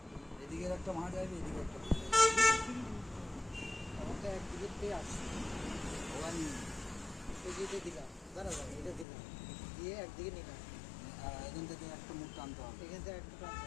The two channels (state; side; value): drops out; right; at 9.1 s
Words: এদিকের একটা মাছ আসবে, এদিকে একটা মাছ আমার তো একদিকে পেয়ে আসছে, ওখান এই যে এটা দিলাম, দাঁড়া এটা দিলাম, দিয়ে একদিকে নিলাম, এখান থেকে একটা মুখ টানতে হবে, এখান থেকে একটা টানতে